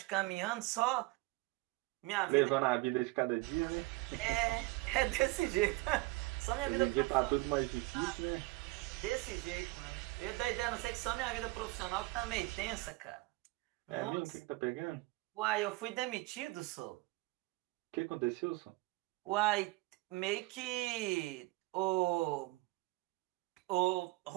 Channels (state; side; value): quieter; left; 22.6 dB